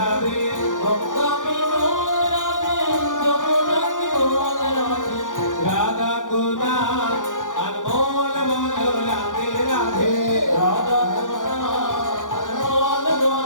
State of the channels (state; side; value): late; right; 0.88 ms